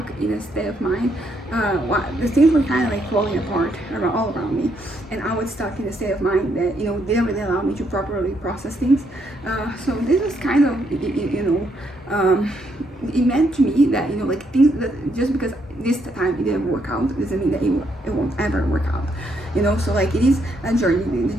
in a state of mind. The things were kind of like falling apart all around me, and I was stuck in a state of mind that, you know, didn't really allow me to properly process things. So this was kind of, you know, it meant to me that, you know, like things that just because this time it didn't work out doesn't mean that it won't ever work out. You know, so like it is a journey. The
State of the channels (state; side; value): normal; both; correlation 0.75